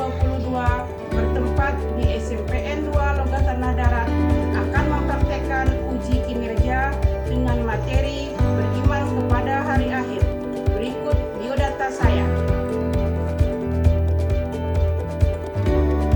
bertempat di SMPN 2 Logat Tanah Darat akan mempraktekkan uji kinerja dengan materi beriman kepada hari akhir. Berikut biodata saya.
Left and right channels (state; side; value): identical; both; correlation 1.00